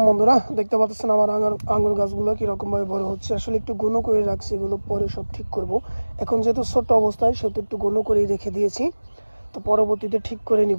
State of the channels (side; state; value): both; inverted; correlation -1.00